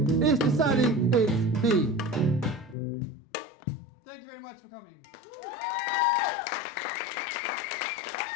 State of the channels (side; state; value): right; drops out; at 2.8 s